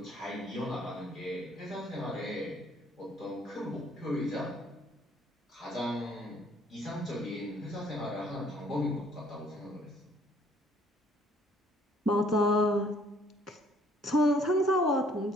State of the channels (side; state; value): both; normal; correlation 0.61